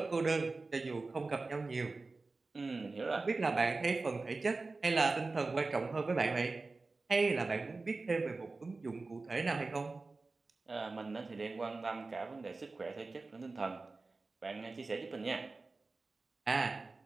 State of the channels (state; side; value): quieter; left; 3.7 dB